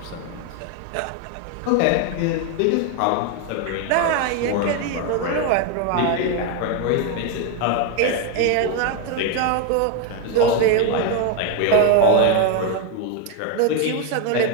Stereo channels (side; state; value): both; different; correlation 0.01